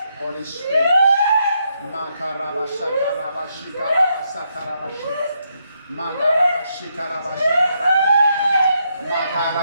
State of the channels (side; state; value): both; inverted; correlation -0.78